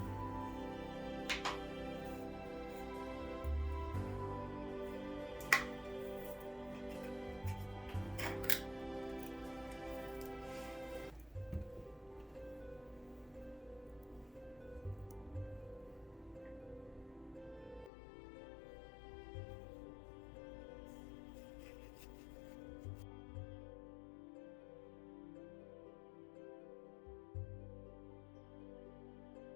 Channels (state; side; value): drops out; right; at 17.9 s